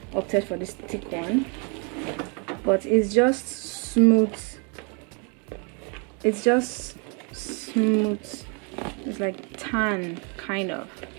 opted for this thick one. But it's just smooth. It's just smooth. It's like tan, kind of.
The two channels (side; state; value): left; quieter; 35.2 dB